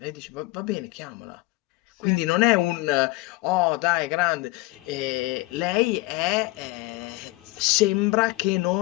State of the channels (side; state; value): right; quieter; 21.3 dB